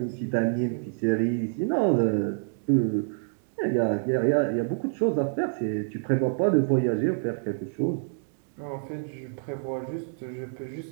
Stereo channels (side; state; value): left; silent; digital silence